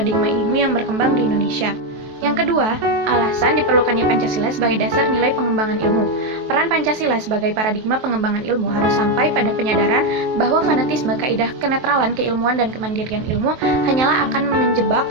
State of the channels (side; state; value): left; late; 23 ms